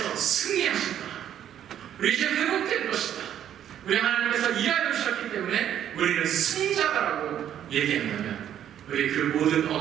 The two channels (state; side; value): quieter; left; 10.3 dB